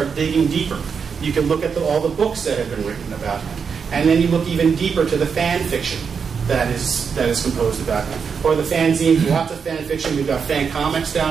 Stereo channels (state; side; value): quieter; left; 6.2 dB